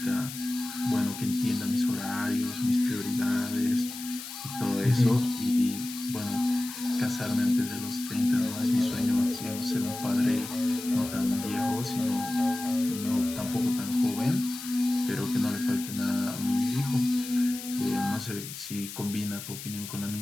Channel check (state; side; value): noise; left; hiss, 10 dB below the sound